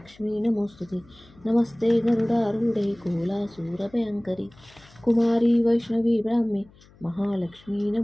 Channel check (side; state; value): left; noise; hum, 26 dB below the sound